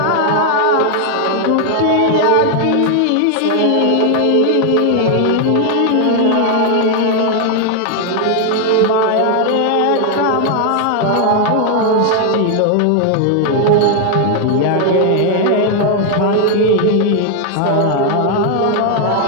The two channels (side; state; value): both; different; correlation 0.00